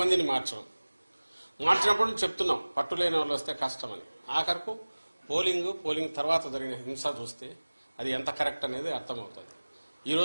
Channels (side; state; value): both; inverted; correlation -1.00